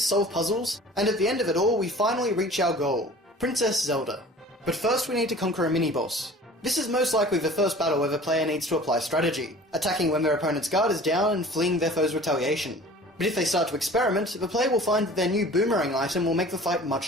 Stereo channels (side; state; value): both; normal; correlation 0.44